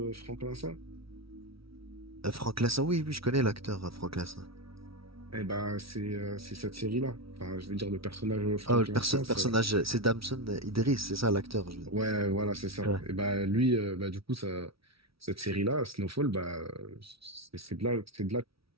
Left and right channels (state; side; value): late; left; 0.75 ms